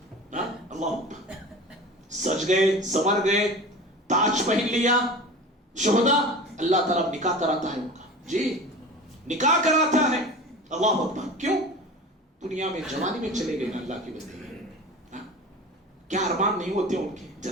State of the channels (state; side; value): normal; both; correlation 0.35